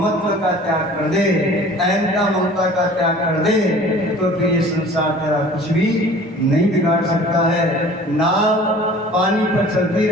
का त्याग कर दे, अहंता ममता का त्याग कर दे, तो फिर ये संसार तेरा कुछ भी नहीं बिगाड़ सकता है। नाव पानी पर चलती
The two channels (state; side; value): normal; both; correlation 0.46